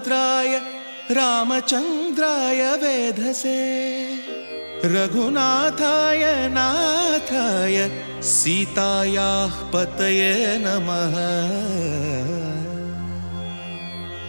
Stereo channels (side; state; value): both; inverted; correlation -1.00